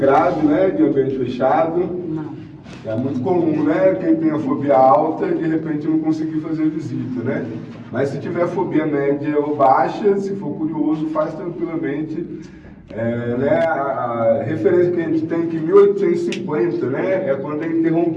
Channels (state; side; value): identical; both; correlation 1.00